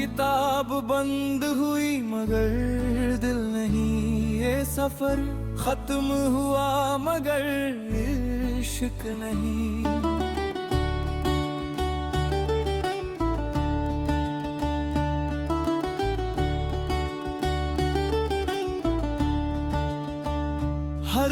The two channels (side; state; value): both; identical; correlation 1.00